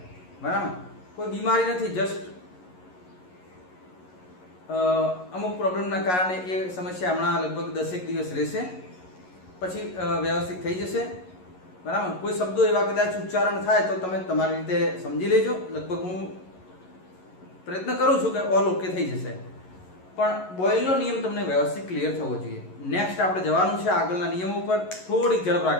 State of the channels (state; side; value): late; right; 11 ms